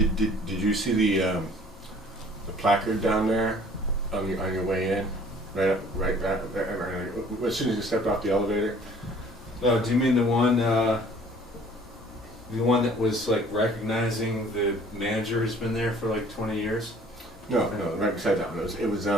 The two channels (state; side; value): normal; both; correlation 0.53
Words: Did you see the placard down there on your way in? Right, as soon as you stepped off the elevator. Oh, do you mean the one that was like recognizing the manager who's been there for like 20 years? No, right beside that one. It was